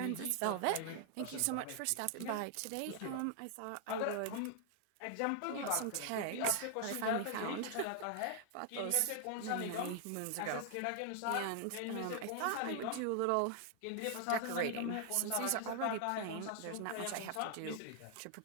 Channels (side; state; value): both; different; correlation 0.00